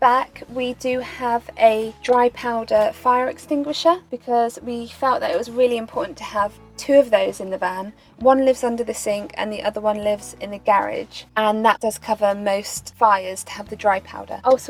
back we do have a dry powder fire extinguisher because we felt that it was really important to have 2 of those in the van. One lives under the sink and the other one lives in the garage, and that does cover most fires to have the dry powder.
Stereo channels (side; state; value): both; identical; correlation 1.00